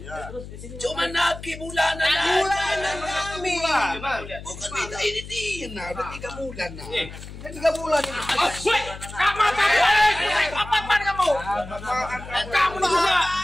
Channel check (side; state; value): left; noise; hum, 13 dB below the sound